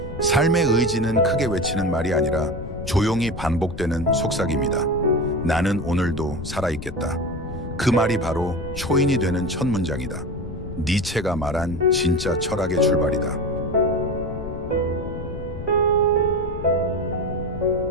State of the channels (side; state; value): left; noise; rumble, 9 dB below the sound